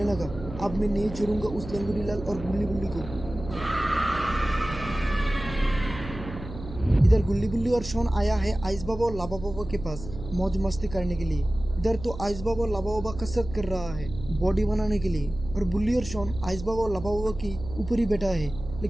लगा, अब मैं नहीं छोड़ूंगा उस लंगोटीलाल और गुल्ली बुल्ली को। इधर गुल्ली बुल्ली और शॉन आया है आइस बाबा और लाबा बाबा के पास मौज मस्ती करने के लिए। इधर तो आइस बाबा और लाबा बाबा कसरत कर रहा है बॉडी बनाने के लिए और बुल्ली और शॉन आइस बाबा और लाबा बाबा की ऊपर ही बैठा है।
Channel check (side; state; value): right; noise; hum, 11 dB below the sound